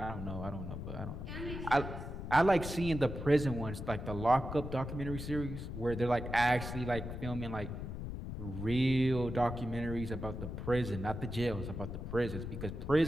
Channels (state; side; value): noise; left; rumble, 6 dB below the sound